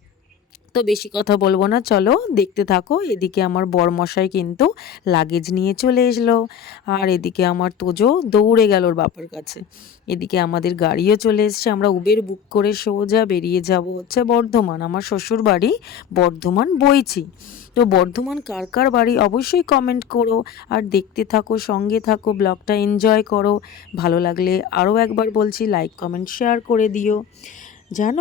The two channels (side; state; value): right; quieter; 8.4 dB